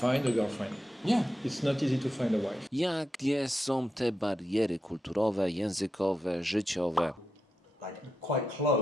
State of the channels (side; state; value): both; normal; correlation 0.87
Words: a girlfriend. Yeah. It's not easy to find a wife. Jakie są te bariery kulturowe, językowe, życiowe? Like quite